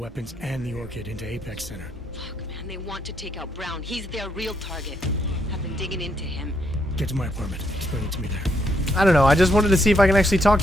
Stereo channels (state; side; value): normal; both; correlation 0.75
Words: and the Orchid into Apex Center. Fuck, man, they want to take out Brown. He's their real target. I've been digging into him. Get to my apartment. Explain it to me there. I don't know. I just wanted to see if I can actually talk